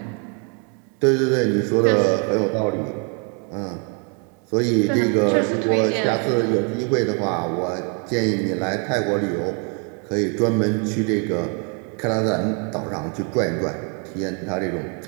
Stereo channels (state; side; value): quieter; left; 37.5 dB